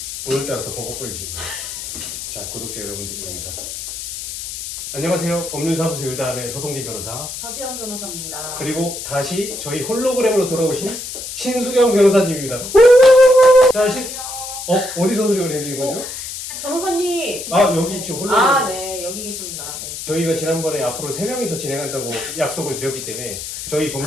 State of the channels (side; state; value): left; noise; hiss, 8 dB below the sound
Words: 오늘따라 더 버벅거리시고. 자, 구독자 여러분들께 네. 인사. 안녕하세요. 법률사무소 일담의 서동진 변호사. 서지영 변호사입니다. 그리고 다시 저희 홀로그램으로 돌아오신 신수경 변호사님입니다. 자, 어디서 소리를 내는 거죠? 변호사님! 아, 여기 지금 홀로그램. 네, 여기 계십니다. 네. 저희가 지난번에 앞으로 3명이서 진행한다고 약속을 드렸기 때문에 저희